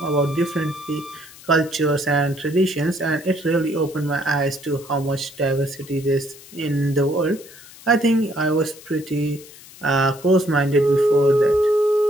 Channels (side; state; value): left; noise; hiss, 20 dB below the sound